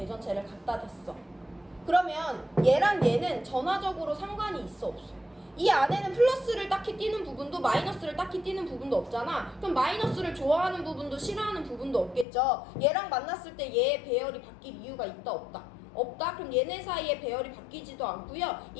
갖다 댔어. 그러면 얘랑 얘는 전하적으로 상관이 있어 없어? 이 안에는 플러스를 딱히 띠는 부분도 마이너스를 딱히 띠는 부분도 없잖아. 그럼 마이너스를 좋아하는 부분도 싫어하는 부분도 없겠죠. 얘랑 만났을 때 얘의 배열이 바뀔 이유가 있다 없다? 없다? 그럼 얘네 사이에 배열이 바뀌지도 않고요.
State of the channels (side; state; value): right; drops out; at 12.2 s